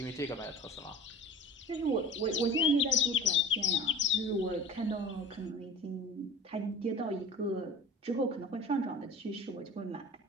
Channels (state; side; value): normal; both; correlation 0.40